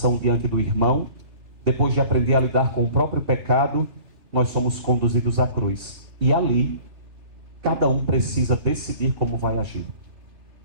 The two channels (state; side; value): late; left; 2.7 ms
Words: diante do irmão, depois de aprender a lidar com o próprio pecado, nós somos conduzidos à cruz. E ali, cada um precisa decidir como vai agir.